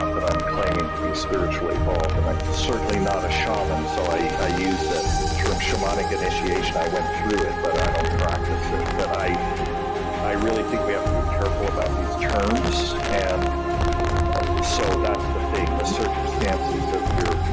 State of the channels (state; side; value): identical; both; correlation 1.00